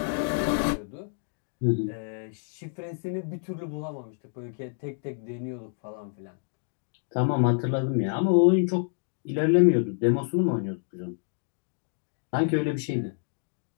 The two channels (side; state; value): right; silent; digital silence